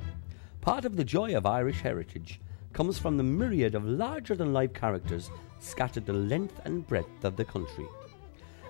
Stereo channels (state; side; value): silent; right; digital silence